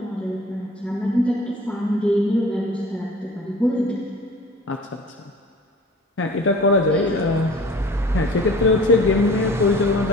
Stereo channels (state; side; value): normal; both; correlation 0.45